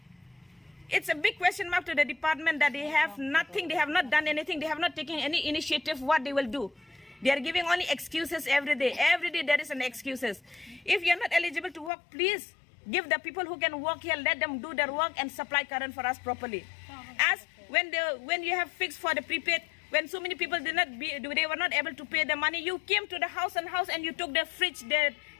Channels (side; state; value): right; drops out; at 11.9 s